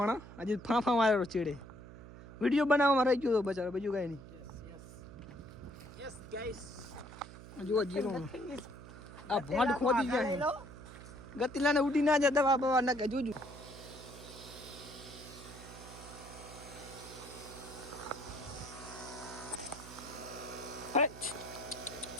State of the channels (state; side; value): noise; right; hum, 15 dB below the sound